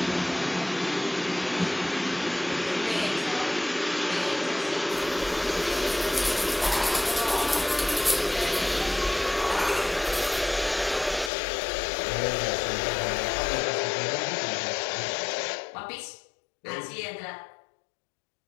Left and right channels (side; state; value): right; drops out; at 11.3 s